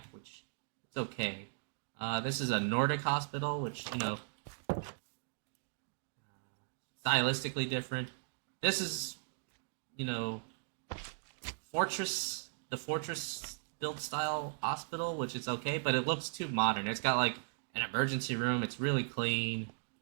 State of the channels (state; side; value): silent; left; digital silence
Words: which it's okay. This is a Nordic hospital, which stylistically different. This is, fortress, the fortress built style hospital, which is okay, but it looks too modern. It's got like an emergency room. It's really clean.